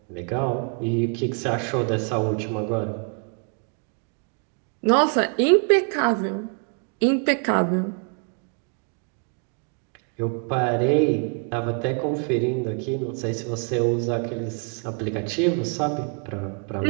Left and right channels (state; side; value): quieter; left; 39.3 dB